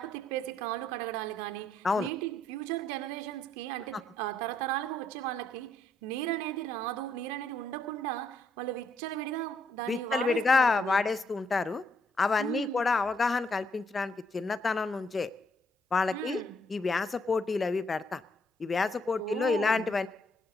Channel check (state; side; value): normal; both; correlation 0.72